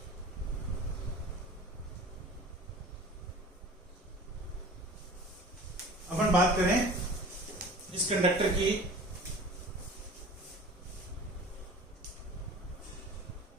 अपन बात करें इस कंडक्टर की,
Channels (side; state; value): both; normal; correlation 0.41